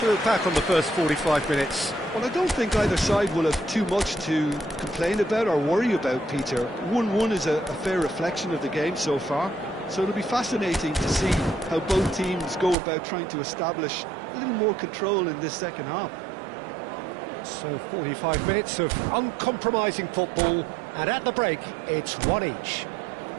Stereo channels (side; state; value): left; drops out; at 12.8 s